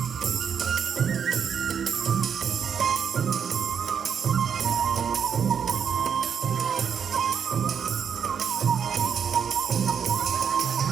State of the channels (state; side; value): quieter; left; 7.3 dB